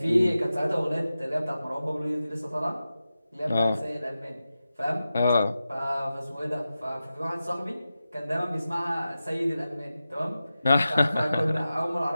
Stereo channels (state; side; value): inverted; both; correlation -0.93